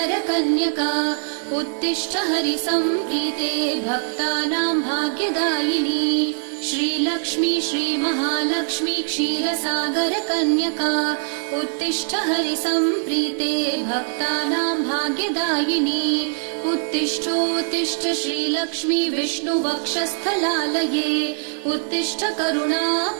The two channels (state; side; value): silent; left; 64 dB below the other